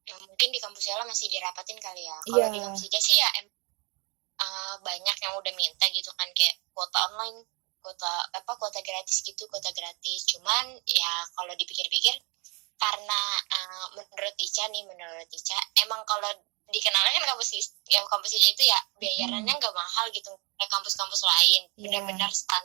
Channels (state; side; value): quieter; left; 31.0 dB